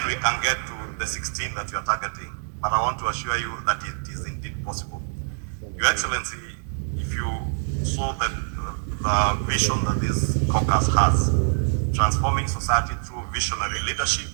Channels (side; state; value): left; silent; digital silence